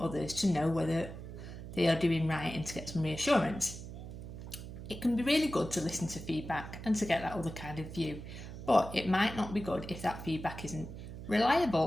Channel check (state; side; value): noise; right; hum, 11 dB below the sound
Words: others to know whether they are doing right and to get some reassurance. It can be really good to listen to feedback and to get that other kind of view, but it might not be good if that feedback isn't